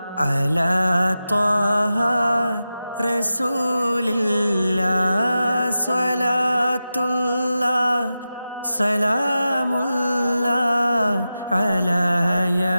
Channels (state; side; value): inverted; both; correlation -0.92